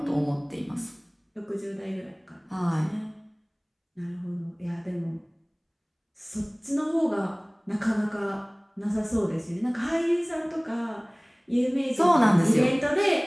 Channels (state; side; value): identical; both; correlation 1.00